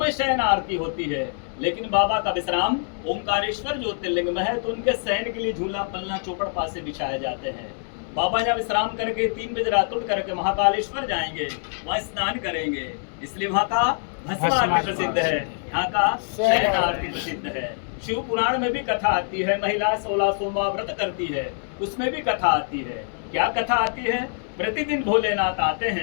शयन आरती होती है, लेकिन बाबा का विश्राम ओंकारेश्वर ज्योतिर्लिंग में है, तो उनके शयन के लिए झूला पलना चौपड़ पासे बिछाए जाते हैं। बाबा यहाँ विश्राम करके 3 बजे रात उठ करके महाकालेश्वर जाएंगे, वहाँ स्नान करेंगे। इसलिए वहाँ का भस्म आरती प्रसिद्ध है, यहाँ का शयन आरती प्रसिद्ध है। शिव पुराण में भी कथा आती है, महिला 16 सोमवार व्रत करती है, उसमें भी कथा आती है। क्या कथा आती है? प्रतिदिन भोलेनाथ आते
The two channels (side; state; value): right; silent; 62 dB below the other